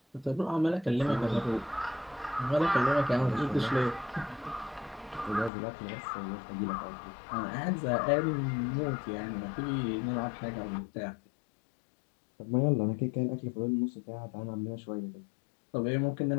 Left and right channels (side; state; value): right; drops out; at 5.5 s